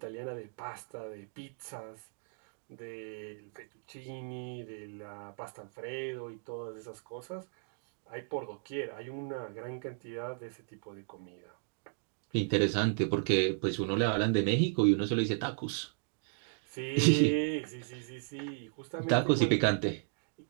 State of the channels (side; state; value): left; silent; digital silence